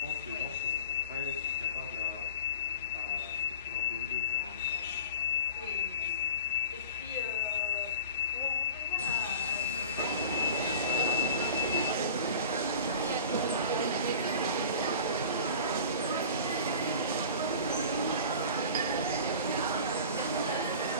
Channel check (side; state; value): both; inverted; correlation -0.37